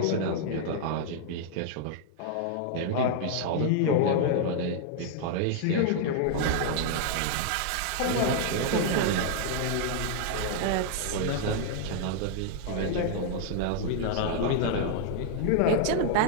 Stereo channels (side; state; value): both; different; correlation -0.01